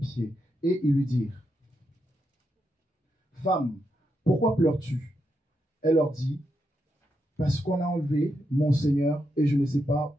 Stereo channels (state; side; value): normal; both; correlation 0.83